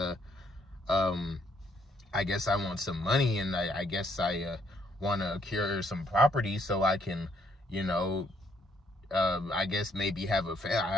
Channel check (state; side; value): normal; both; correlation 0.69